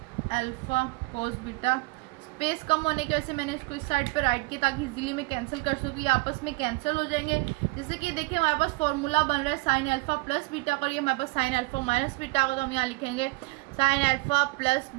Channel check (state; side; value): quieter; left; 24.8 dB